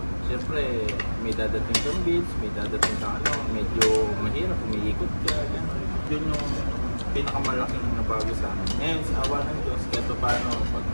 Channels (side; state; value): both; inverted; correlation -1.00